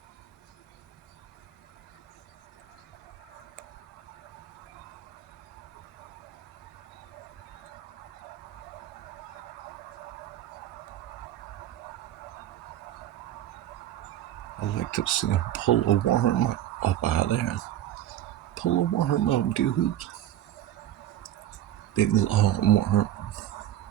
I like to see him pull a worm up out of there. Pull a worm up, dude. Big long worm.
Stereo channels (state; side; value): quieter; left; 12.2 dB